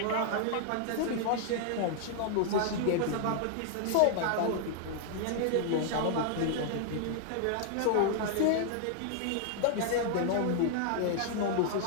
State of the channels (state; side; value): different; both; correlation -0.01